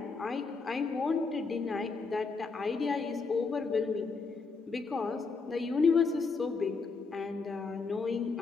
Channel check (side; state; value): right; quieter; 4.4 dB